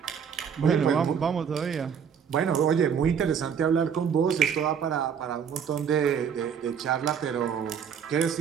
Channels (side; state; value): left; quieter; 7.4 dB